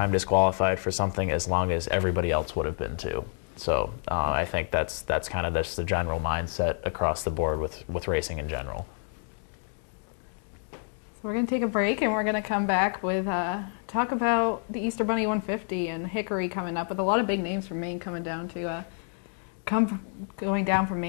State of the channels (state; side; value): silent; right; 57 dB below the other